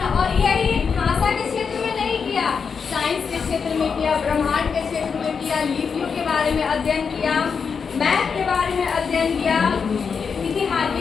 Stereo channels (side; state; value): right; quieter; 5.9 dB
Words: और यही भाषा के क्षेत्र में नहीं किया, साइंस के क्षेत्र में किया, ब्रह्मांड के क्षेत्र में किया, लिपियों के बारे में अध्ययन किया, मैथ के बारे में अध्ययन किया, इतिहास